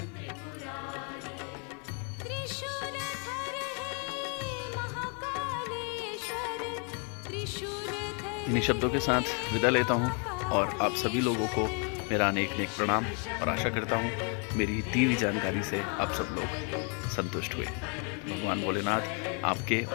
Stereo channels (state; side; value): quieter; right; 37.7 dB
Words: इन्हीं शब्दों के साथ विदा लेता हूँ और आप सभी लोगों को मेरा अनेक अनेक प्रणाम और आशा करता हूँ मेरी दी हुई जानकारी से आप सब लोग संतुष्ट हुए। भगवान भोलेनाथ आपके